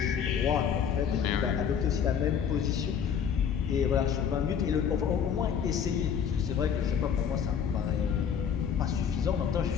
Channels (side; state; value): right; quieter; 7.7 dB